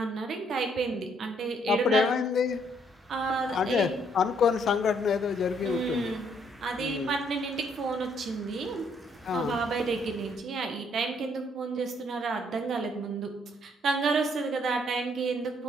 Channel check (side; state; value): both; normal; correlation 0.68